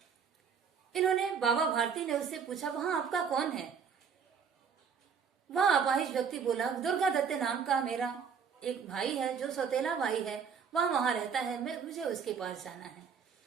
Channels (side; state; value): left; quieter; 6.5 dB